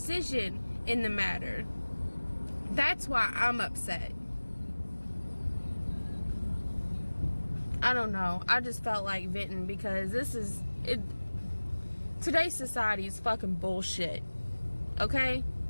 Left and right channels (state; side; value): inverted; both; correlation -1.00